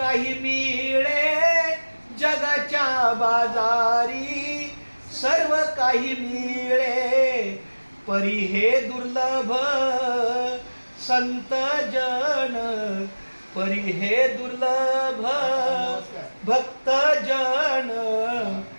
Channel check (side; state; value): both; inverted; correlation -1.00